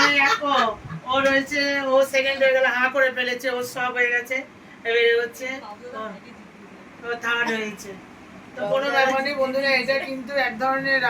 ও রয়েছে, ও সেকেন্ড হয়ে গেল, হাঁ করে ফেলেছে, ও সব হয়ে গেছে, এবারে হচ্ছে থার্ড হয়েছে। তো কোনো ব্যাপার নেই বন্ধুরা, এটা কিন্তু এক ধরনের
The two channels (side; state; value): both; identical; correlation 1.00